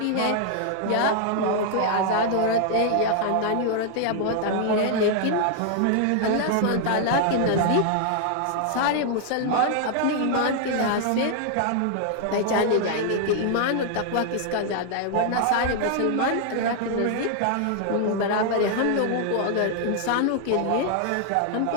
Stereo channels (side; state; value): both; different; correlation 0.00